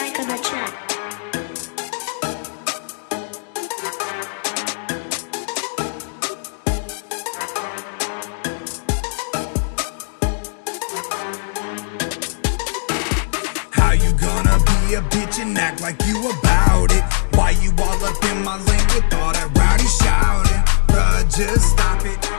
on the track. How you gonna be a bitch and act like you about it? Why you all up in my lane with all that rowdy shouting? Bruh, just stop it.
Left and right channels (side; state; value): right; silent; digital silence